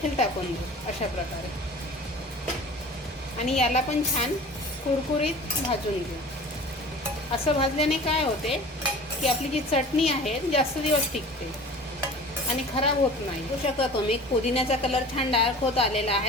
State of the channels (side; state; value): both; normal; correlation 0.41